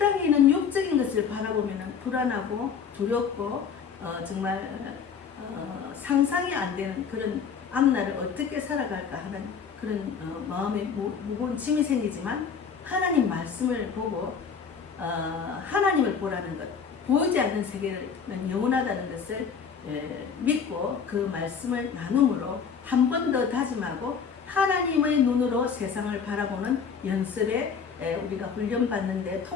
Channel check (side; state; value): right; quieter; 6.5 dB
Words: 있는 육적인 것을 바라보면 불안하고 두렵고 정말 상상이 안 되는 그런 앞날을 어떻게 살아갈까 하는 그런 마음에 무거운 짐이 생기지만 하나님 말씀을 보고 하나님을 보라는 것, 보이지 않는 세계는 영원하다는 것을 믿고 그 말씀을 나눔으로 한 번 더 다짐하고 하나님의 눈으로 세상을 바라보는 연습에 우리가 훈련받는 데